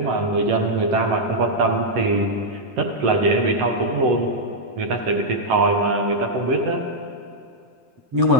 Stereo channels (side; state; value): left; late; 7.8 ms